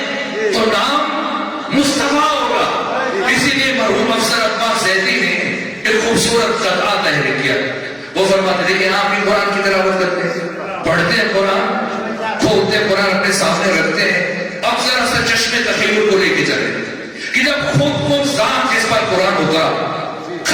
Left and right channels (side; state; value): both; identical; correlation 1.00